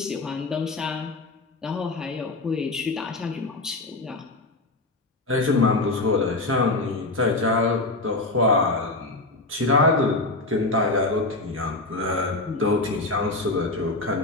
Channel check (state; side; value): quieter; right; 3.0 dB